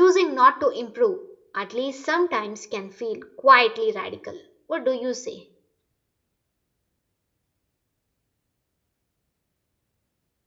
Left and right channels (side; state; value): both; identical; correlation 1.00